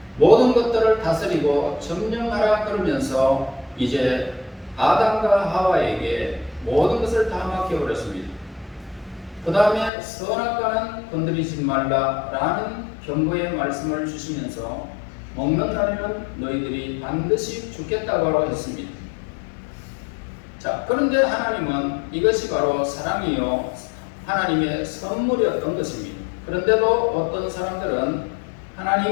모든 것들을 다스리고 점령하라 그러면서 이제 아담과 하와에게 모든 것을 다 맡겨버렸습니다. 그 다음에 선악과는 건드리지 말라라는 경고의 말씀을 주시면서 먹는 날에는 너희들이 반드시 죽겠다고 했습니다. 자, 그런데 하나님은 이것이 바로 사랑이요 하나님의 선물이었던 것입니다. 그런데도 어떤 사람들은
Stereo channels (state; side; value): drops out; right; at 9.9 s